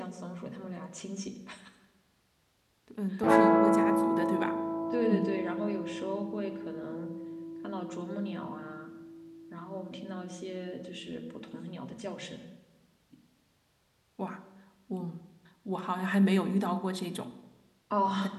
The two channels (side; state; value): both; identical; correlation 1.00